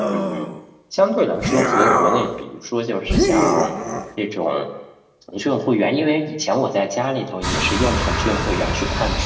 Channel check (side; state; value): both; identical; correlation 1.00